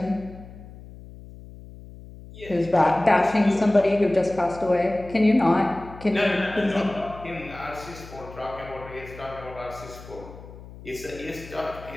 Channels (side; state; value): left; noise; hum, 17 dB below the sound